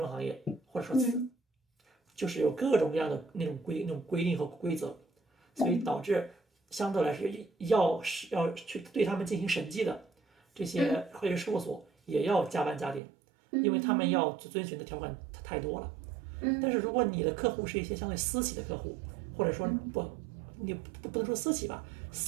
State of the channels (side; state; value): left; drops out; at 13.0 s